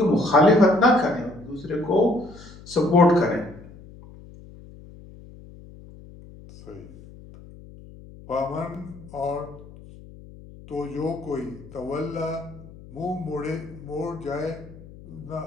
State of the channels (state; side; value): noise; left; hum, 19 dB below the sound